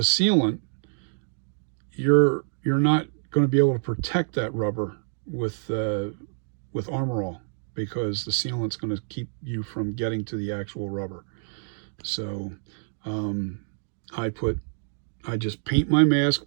you're not going to be able to protect that rubber with Armor All, because the sealant's going to keep you from getting to the actual rubber. So I just paint my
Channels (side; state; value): left; silent; digital silence